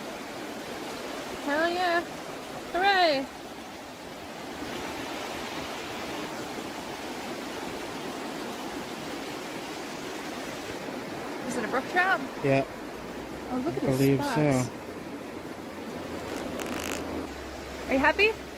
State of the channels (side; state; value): both; identical; correlation 1.00